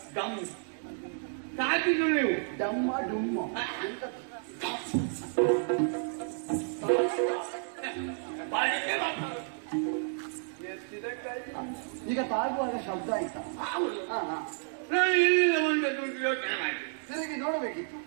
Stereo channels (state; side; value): silent; left; digital silence